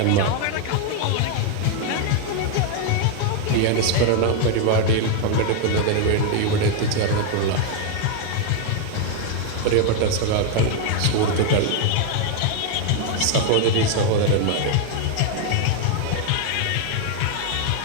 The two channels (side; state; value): both; different; correlation 0.00